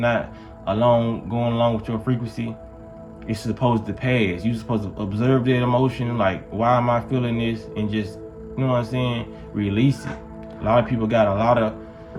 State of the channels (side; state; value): both; identical; correlation 1.00